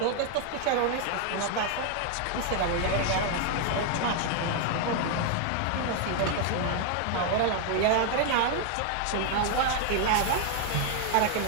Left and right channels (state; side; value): different; both; correlation 0.00